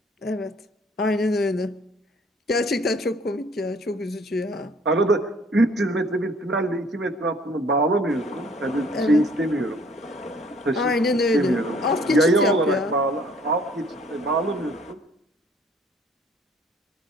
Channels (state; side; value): normal; both; correlation 0.57